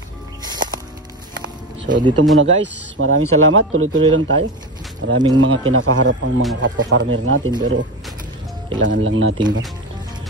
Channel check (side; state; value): both; normal; correlation 0.22